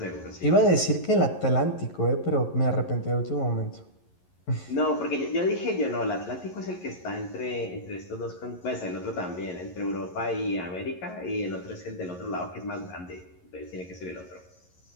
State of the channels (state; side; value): late; right; 11 ms